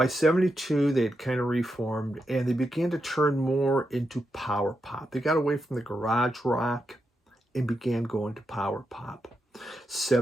72, they had kind of reformed, and they began to turn more into power pop. They got away from the garage rock and began going to power pop.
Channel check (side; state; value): both; normal; correlation 0.85